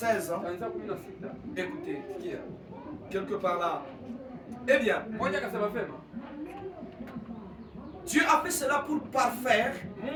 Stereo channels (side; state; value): both; identical; correlation 1.00